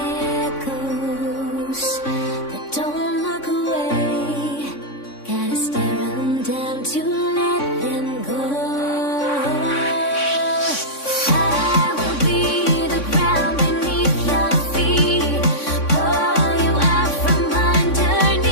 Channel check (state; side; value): late; right; 3.6 ms